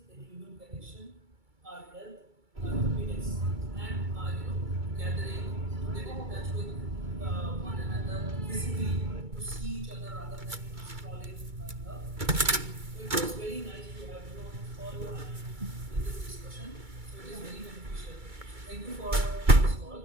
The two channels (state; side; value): late; left; 2.3 ms